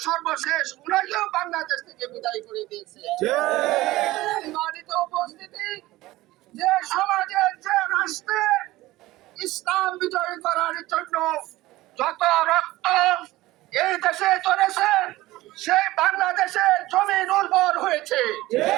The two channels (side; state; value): left; quieter; 18.0 dB